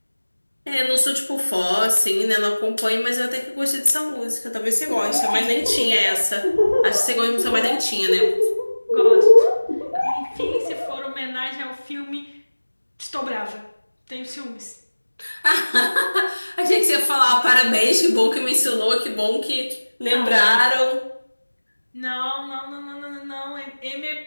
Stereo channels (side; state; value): both; inverted; correlation -1.00